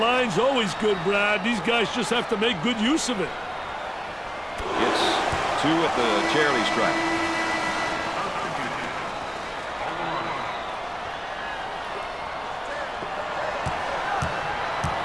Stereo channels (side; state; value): both; identical; correlation 1.00